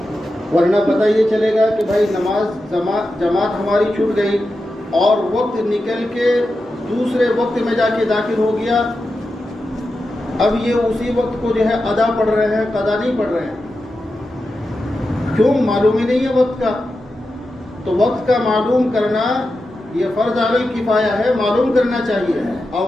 ورنہ پتہ یہ چلے گا کہ بھائی جماعت ہماری چھوٹ گئی اور وقت نکل کے دوسرے وقت میں جا کے داخل ہو گیا، اب یہ اسی وقت کو جو ہے ادا پڑھ رہے ہیں، قضا نہیں پڑھ رہے ہیں. کیوں؟ معلوم ہی نہیں ہے وقت کا. تو وقت کا معلوم کرنا یہ فرض علی الکفایہ ہے، معلوم کرنا چاہیے.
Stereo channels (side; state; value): both; normal; correlation 0.90